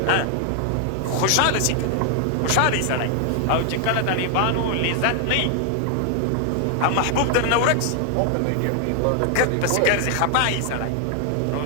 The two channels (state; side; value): different; both; correlation 0.00